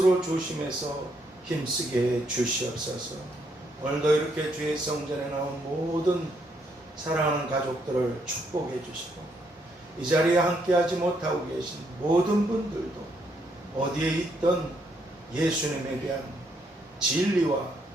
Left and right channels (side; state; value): both; normal; correlation 0.74